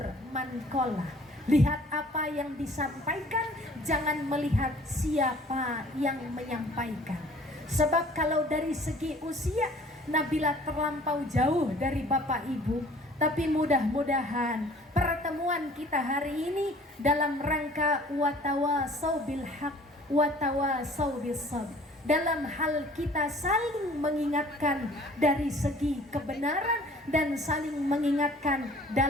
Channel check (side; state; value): both; normal; correlation 0.52